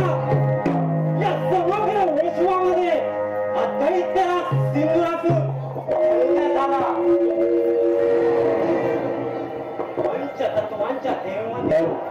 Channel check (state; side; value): identical; both; correlation 1.00